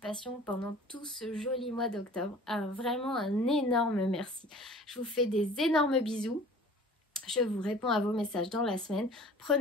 pendant tout ce joli mois d'octobre. Vraiment un énorme merci. Je vous fais des énormes bisous. Je vous réponds à vos messages dans la semaine.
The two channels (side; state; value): both; normal; correlation 0.46